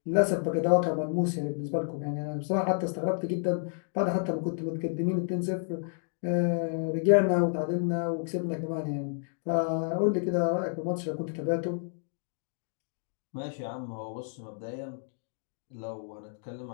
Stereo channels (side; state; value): right; silent; digital silence